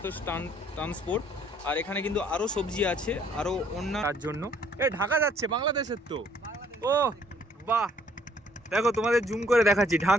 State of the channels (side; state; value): both; normal; correlation 0.62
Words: ট্রান্সপোর্ট, আর এখানে কিন্তু আরো সবজি আছে, আরো অন্য তার জন্য। এই ঢাকা যাচ্ছে বাংলাদেশের তো। ও বাহ, দেখো তোমাদের জুম করে দেখাচ্ছি,